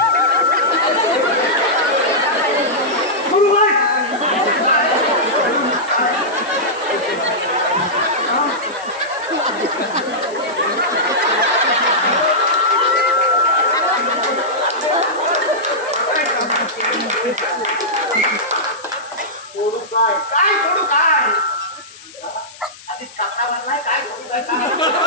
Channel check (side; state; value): left; noise; hiss, 19 dB below the sound